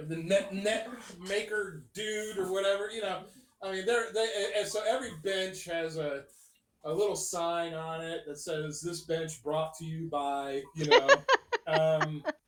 net maker dude or whatever, I mean, and so every bench has a little sign on it that says "This bench brought to you by,"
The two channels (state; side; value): identical; both; correlation 1.00